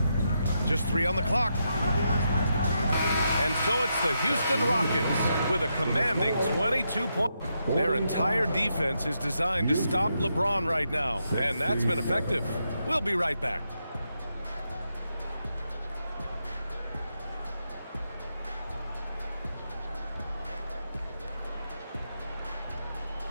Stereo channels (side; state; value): both; inverted; correlation -0.83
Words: Just 3 on the clock. And so it's the Houston Rockets with a commanding 22 points. Their entire defense is designed to stop LeBron right now, and that's been effective. We'll be right back.